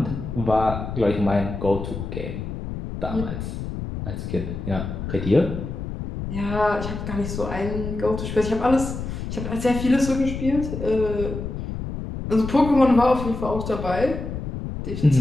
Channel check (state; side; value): noise; left; rumble, 6 dB below the sound